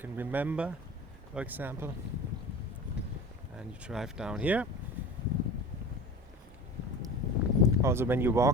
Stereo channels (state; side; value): normal; both; correlation 0.35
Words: remember, for example. And you drive down here. Also, when you